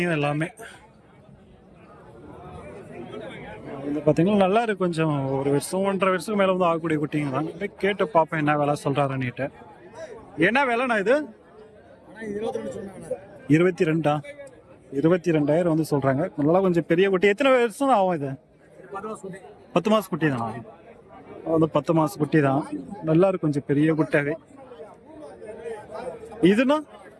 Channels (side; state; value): both; identical; correlation 1.00